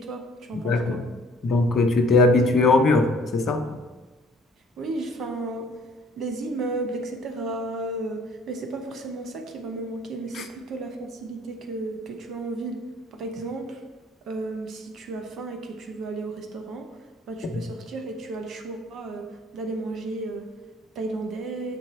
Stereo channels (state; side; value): normal; both; correlation 0.55